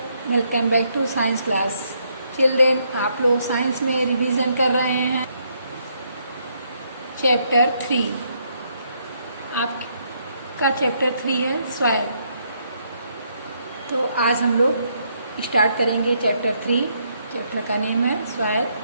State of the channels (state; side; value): inverted; both; correlation -0.73